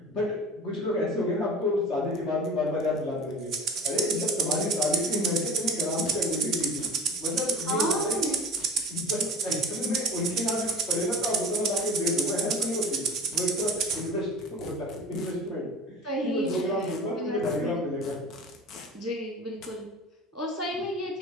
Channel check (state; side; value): normal; both; correlation 0.37